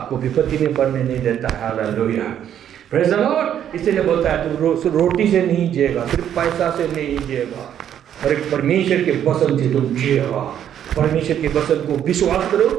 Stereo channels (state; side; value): quieter; left; 9.9 dB